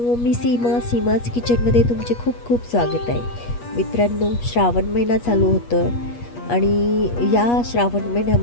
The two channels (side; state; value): right; late; 8.4 ms